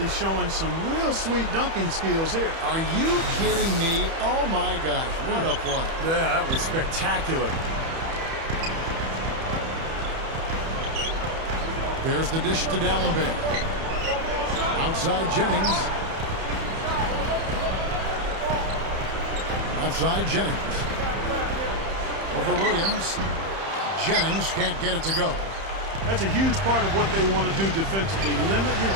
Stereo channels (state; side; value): late; left; 31 ms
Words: showing some real sweet dunking skills here. Are you kidding me? Oh, my gosh. What a play. Yeah, that was spectacular. There's the dish to Dallenberg. Outside Jennings. Outside Jennings. Over Williams. Jennings can't get it to go. That's a huge part of what they want to do defensively. Limit his